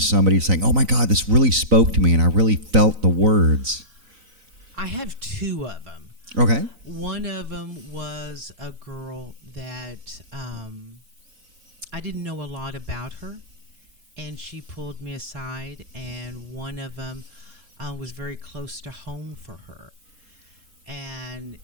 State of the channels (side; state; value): left; late; 4.0 ms